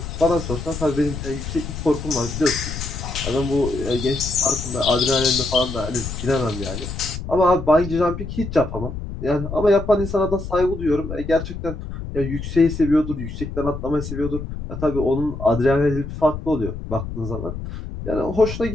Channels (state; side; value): noise; left; rumble, 8 dB below the sound